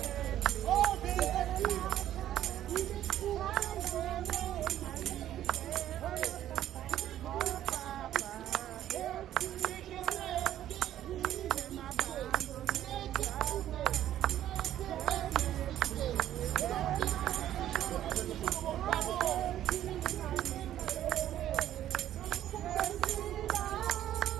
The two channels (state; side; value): quieter; left; 12.1 dB